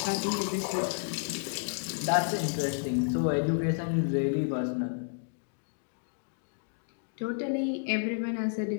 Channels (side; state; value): right; silent; digital silence